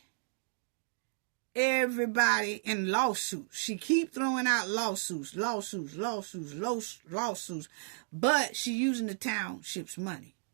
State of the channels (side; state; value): left; silent; digital silence